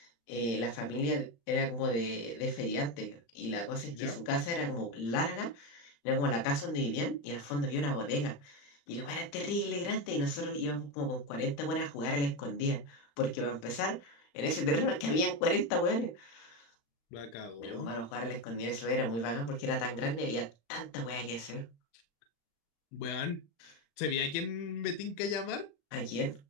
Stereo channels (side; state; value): right; late; 35 ms